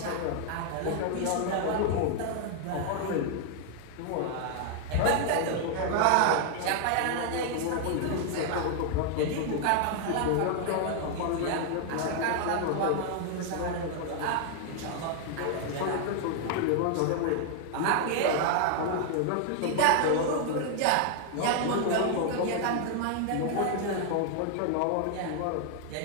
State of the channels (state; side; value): different; both; correlation 0.00